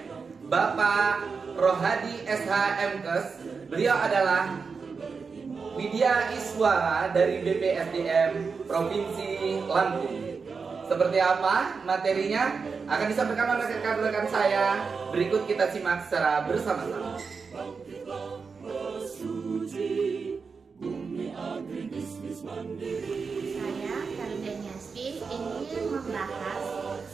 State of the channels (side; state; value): left; quieter; 5.1 dB